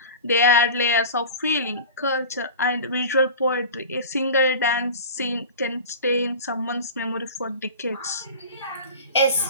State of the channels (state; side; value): inverted; both; correlation -0.35